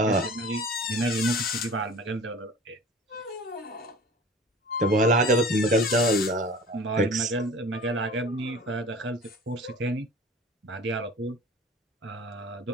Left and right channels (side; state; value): both; normal; correlation 0.42